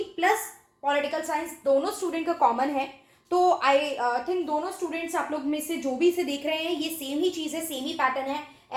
plus political science दोनों स्टूडेंट का कॉमन है. तो आई थिंक दोनों स्टूडेंट्स आप लोग में से जो भी इसे देख रहे हैं ये सेम ही चीज़ है, सेम ही पैटर्न है.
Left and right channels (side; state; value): both; identical; correlation 1.00